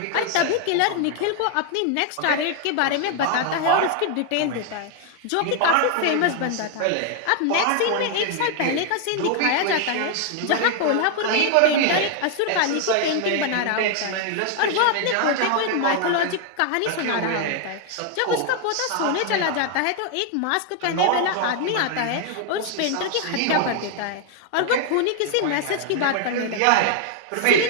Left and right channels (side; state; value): both; different; correlation 0.00